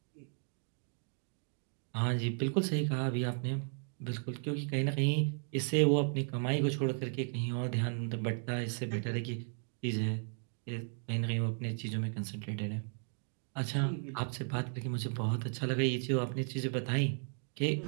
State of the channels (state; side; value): silent; left; 54 dB below the other